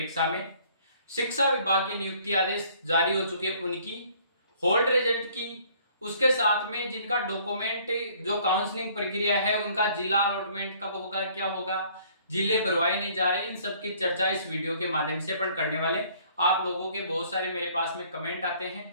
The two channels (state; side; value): inverted; both; correlation -0.59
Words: में शिक्षा विभाग के नियुक्ति आदेश जारी हो चुके उनकी होल्ड रिजल्ट की, उसके साथ में जिनका डॉक्यूमेंट जो काउंसलिंग प्रक्रिया है उनका जिला अलॉटमेंट कब होगा, क्या होगा, जिले भरवाए नहीं जा रहे, इन सब की चर्चा इस वीडियो के माध्यम से अपन करने वाले। आप लोगों के बहुत सारे मेरे पास में कमेंट आते